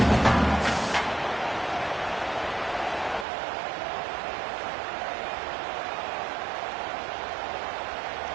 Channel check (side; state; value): left; drops out; at 3.2 s